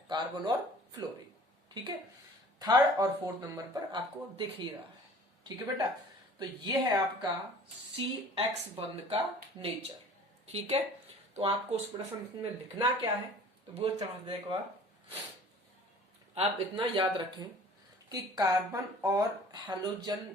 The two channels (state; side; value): normal; both; correlation 0.47